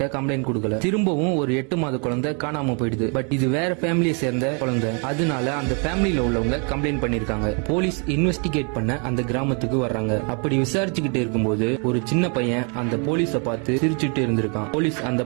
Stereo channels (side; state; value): left; quieter; 37.0 dB